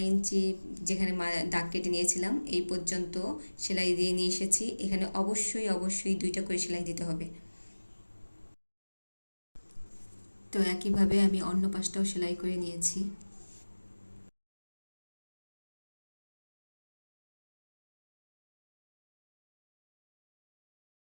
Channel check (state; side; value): inverted; both; correlation -1.00